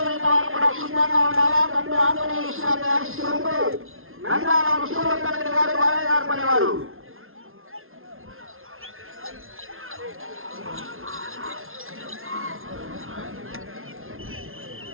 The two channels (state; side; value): late; left; 0.61 ms